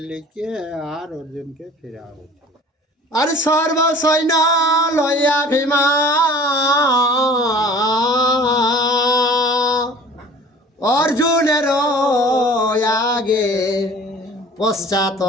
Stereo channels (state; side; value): normal; both; correlation 0.46